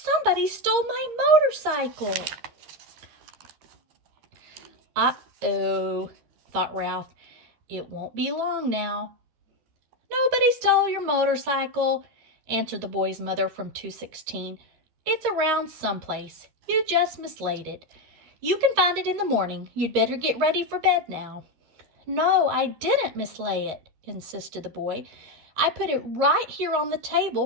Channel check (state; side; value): late; left; 13 ms